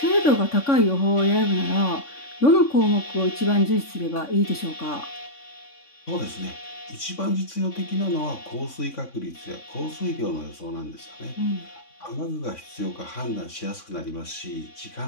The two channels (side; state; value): right; late; 3.6 ms